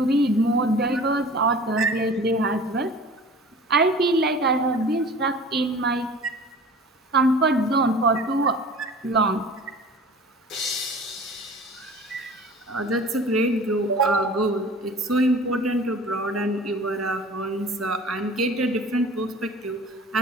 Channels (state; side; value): normal; both; correlation 0.43